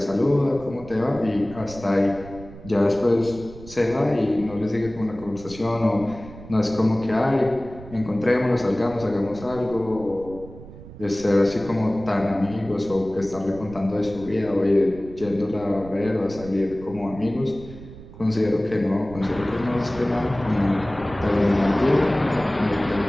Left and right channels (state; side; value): noise; right; rumble, 16 dB below the sound